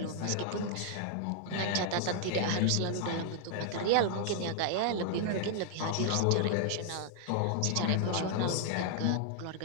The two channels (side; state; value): both; different; correlation 0.00